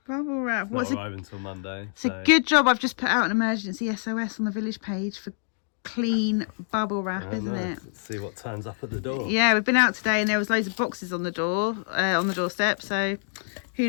Bubble wrap. Not arriving until Monday. It's a good job I've just put out an emergency SOS on the village page for clean bubble wrap, isn't it? Let's see what turns up at the door. Yeah, we've been out today and there was loads of boxes on the door, on the doorstep, so who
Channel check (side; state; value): right; silent; 61 dB below the other